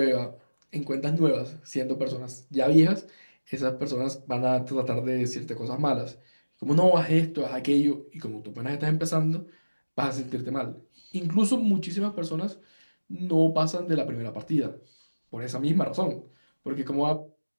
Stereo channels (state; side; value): inverted; both; correlation -1.00